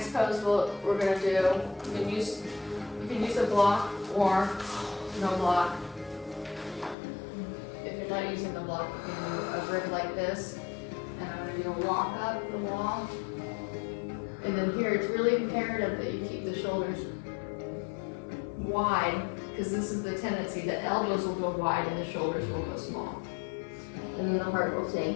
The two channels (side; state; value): right; drops out; at 7.0 s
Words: pose we're gonna do. You can use a block or no block. If you're not using the block, you can do a rib like this. And I'm gonna do a walk up the wall. And then here, it's really imperative that you keep the shoulders wide, because this is the tendency, the elbows will go wide and the shoulders will go small. And then the heart will sink,